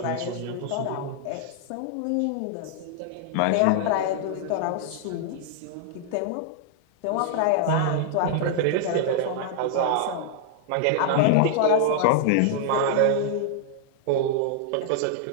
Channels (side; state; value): both; different; correlation -0.01